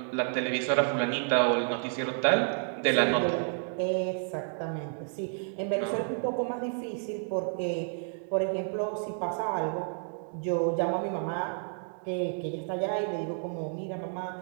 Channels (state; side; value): silent; left; 57 dB below the other